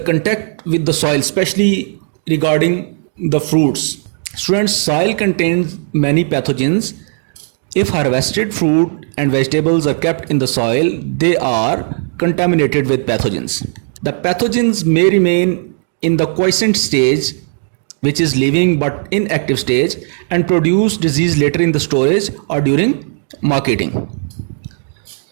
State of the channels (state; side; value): silent; left; 64 dB below the other